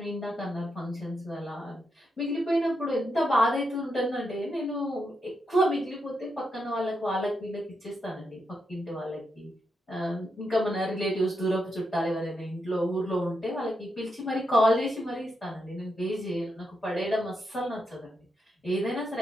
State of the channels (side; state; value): both; normal; correlation 0.83